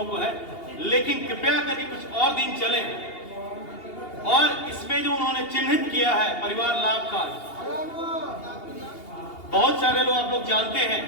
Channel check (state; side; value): late; right; 2.8 ms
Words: को है, लेकिन कृपया करके कुछ और दिन चले। और इसमें जो उन्होंने चिन्हित किया है परिवार लाभ कार्ड, बहुत सारे लोग आप लोग जानते हैं,